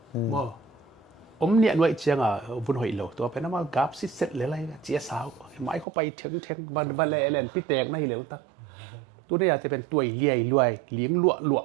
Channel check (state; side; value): drops out; left; at 5.9 s